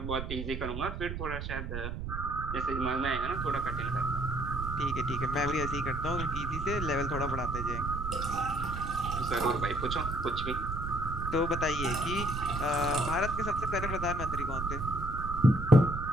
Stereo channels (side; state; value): right; noise; rumble, 5 dB below the sound